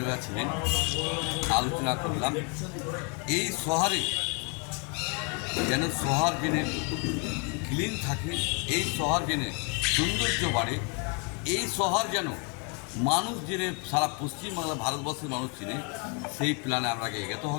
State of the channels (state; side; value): quieter; right; 35.0 dB